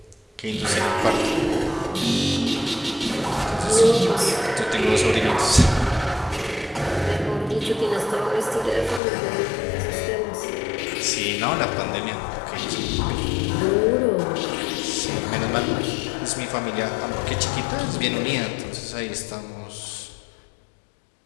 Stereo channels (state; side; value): drops out; right; at 9.0 s